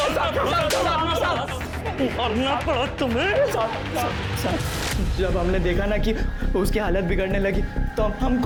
मारना पड़ा तुम्हें? जब हमने देखा ना कि उसकी हालत बिगड़ने लगी तो हम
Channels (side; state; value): both; identical; correlation 1.00